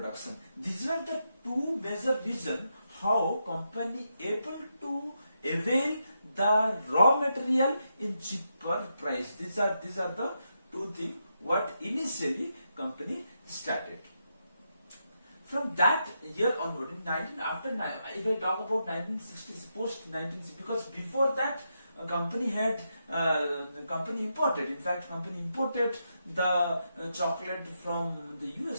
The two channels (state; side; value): inverted; both; correlation -0.84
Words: These are the two major reasons how company able to avail the raw material in cheaper price. These are the two things what initially company started. From that year onward, in 19 after if I talk about 1960s, post 1960s, because before that company had company imported. In fact, company imported the chocolate from the